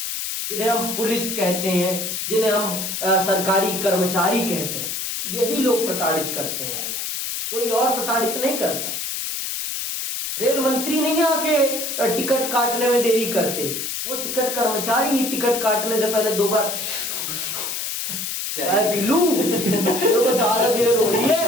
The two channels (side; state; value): left; noise; hiss, 4 dB below the sound